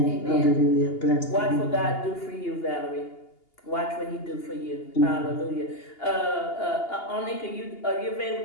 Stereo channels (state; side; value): late; right; 2.8 ms